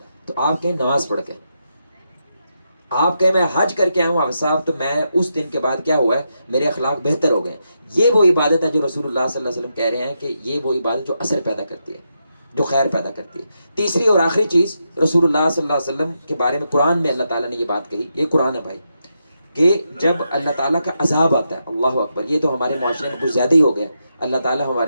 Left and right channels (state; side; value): inverted; both; correlation -0.84